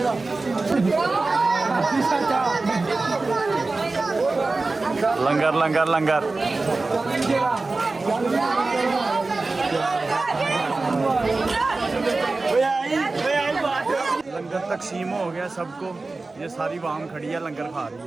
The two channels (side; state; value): left; quieter; 3.5 dB